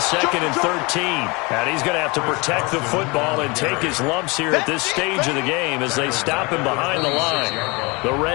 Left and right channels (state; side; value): quieter; right; 27.0 dB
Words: and 13. And he's going to have to protect the football and take his lumps here at this stage of the game as they stop him behind the line. The